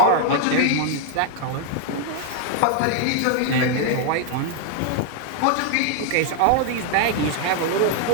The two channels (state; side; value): different; both; correlation 0.01